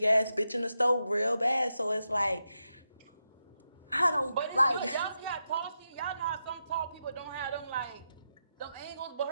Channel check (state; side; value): inverted; both; correlation -0.87